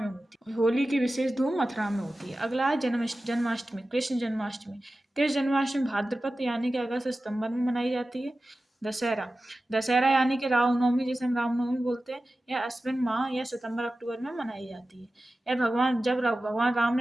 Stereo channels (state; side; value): normal; both; correlation 0.95